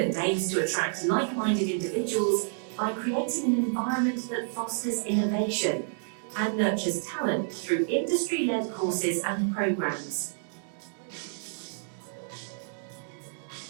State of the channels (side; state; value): left; silent; digital silence